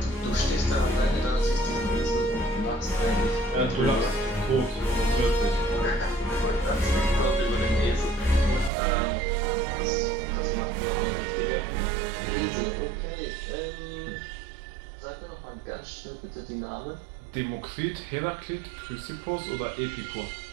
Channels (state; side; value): drops out; left; at 8.7 s